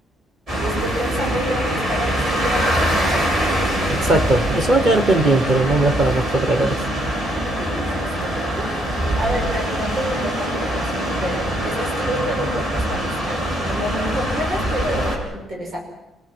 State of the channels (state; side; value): normal; both; correlation 0.71